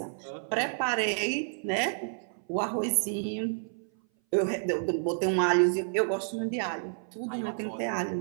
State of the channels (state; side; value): silent; left; 57 dB below the other